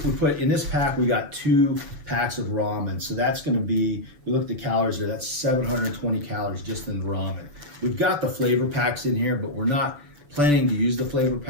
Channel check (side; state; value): left; late; 7.0 ms